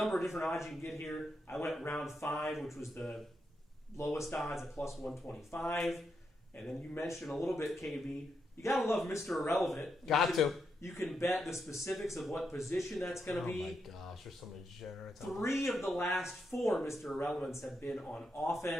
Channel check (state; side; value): normal; both; correlation 0.83